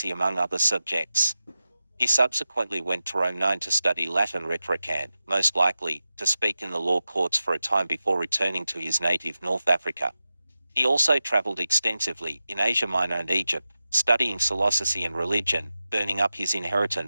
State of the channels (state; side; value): inverted; both; correlation -0.92